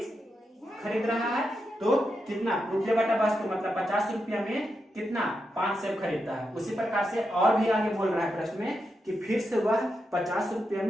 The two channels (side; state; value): both; normal; correlation 0.86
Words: खरीद रहा है, तो कितना रुपया बटा वस्तु मतलब 50 रुपया में कितना 5 सेब खरीदता है। उसी प्रकार से और भी आगे बोल रहा है प्रश्न में कि फिर से वह 50 रुपया